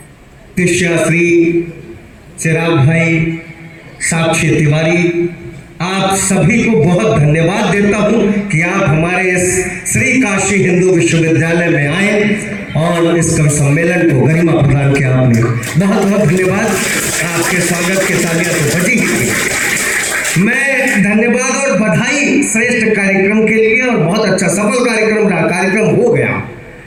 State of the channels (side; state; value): both; identical; correlation 1.00